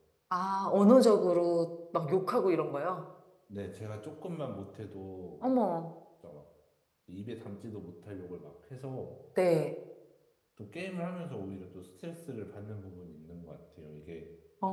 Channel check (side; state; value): both; identical; correlation 1.00